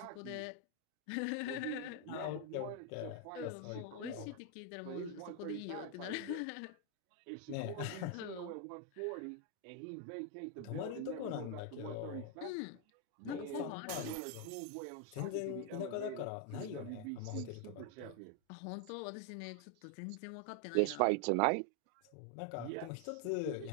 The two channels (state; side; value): different; both; correlation 0.01